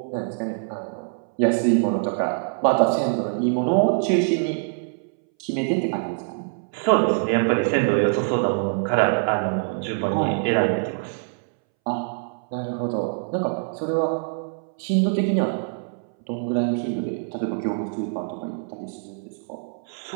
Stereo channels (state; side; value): silent; left; 62 dB below the other